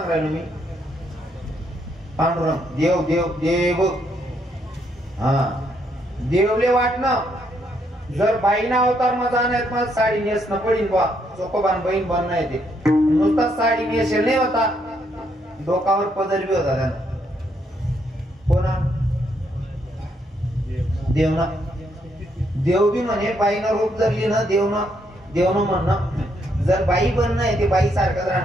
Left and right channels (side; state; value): both; normal; correlation 0.74